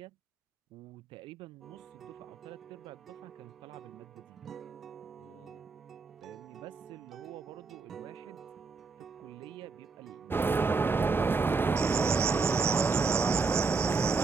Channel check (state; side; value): quieter; left; 4.5 dB